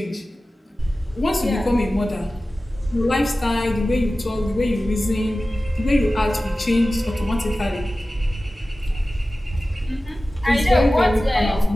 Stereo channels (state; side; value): normal; both; correlation 0.96